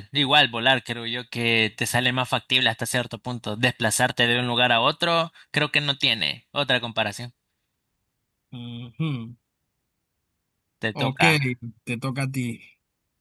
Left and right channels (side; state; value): both; identical; correlation 1.00